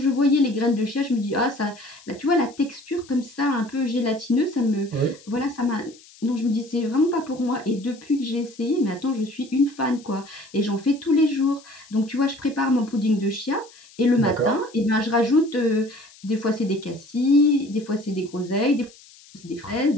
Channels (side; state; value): left; noise; hiss, 24 dB below the sound